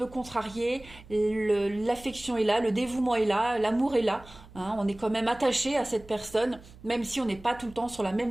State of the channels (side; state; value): right; noise; hum, 21 dB below the sound